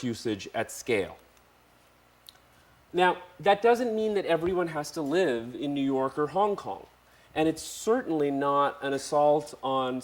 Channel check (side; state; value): both; identical; correlation 1.00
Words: usage at scale. Now, that doesn't mean that everyone has to live in New York or Hong Kong. And it's certainly not an assault on